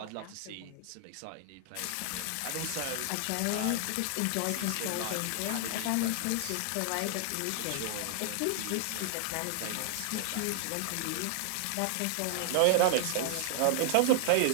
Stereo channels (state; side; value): different; both; correlation 0.00